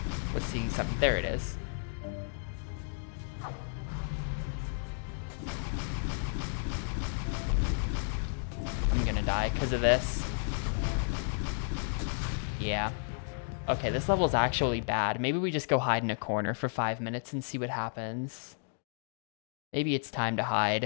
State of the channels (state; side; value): silent; right; digital silence